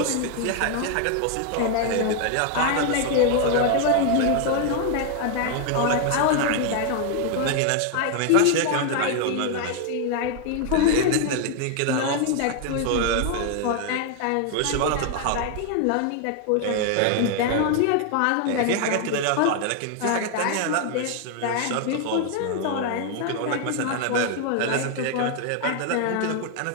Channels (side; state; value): both; different; correlation 0.00